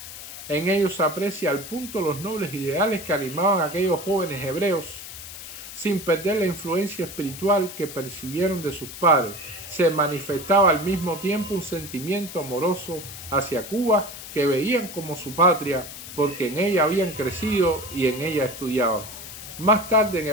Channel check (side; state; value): left; noise; hiss, 12 dB below the sound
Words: En ellos se aprecia al punto los nobles ideales que animaban a aquellos jóvenes hebreos, sin perder la influencia espiritual que percibieron de sus padres. Se manifestaba al mismo tiempo un sentimiento amoroso hacia Cuba, que veían como su patria, porque en ella habían crecido y en ella estudiaban. Más tarde, en